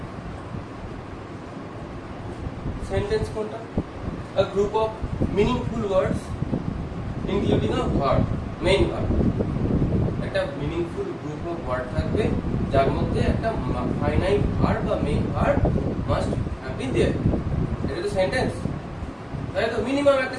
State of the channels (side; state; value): both; identical; correlation 1.00